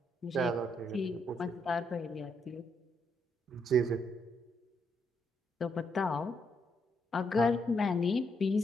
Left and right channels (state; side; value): normal; both; correlation 0.76